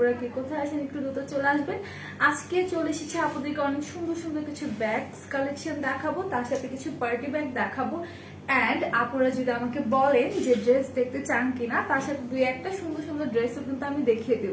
কে কোথায় আছেন একটু দ্রুত চলে আসবেন। আজকে চলে এসেছি আপনাদেরকে অনেক সুন্দর সুন্দর কিছু ব্যাগস কালেকশন দেখাবো, তার সাথে কিছু পার্টি ব্যাগ দেখাবো। অ্যান্ড আপনারা যদি আমাকে বলেন যে ড্রেস দেখতে চান কিনা, তার সাথে দুই একটা সুন্দর সুন্দর ড্রেসও কিন্তু আমি দেখিয়ে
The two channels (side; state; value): both; identical; correlation 1.00